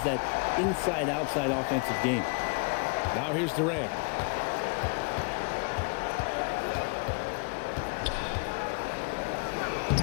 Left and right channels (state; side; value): quieter; right; 34.8 dB